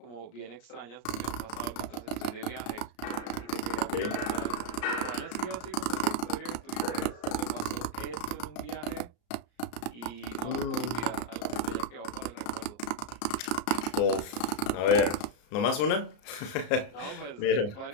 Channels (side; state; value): right; late; 34 ms